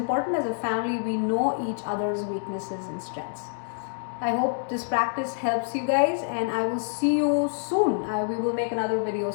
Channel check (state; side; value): silent; right; digital silence